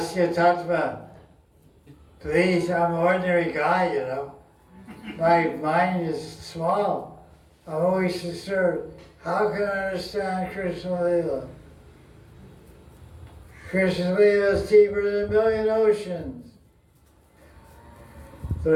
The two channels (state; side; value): identical; both; correlation 1.00